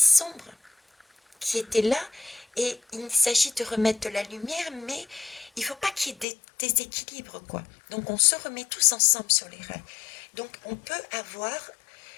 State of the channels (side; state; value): right; drops out; at 6.2 s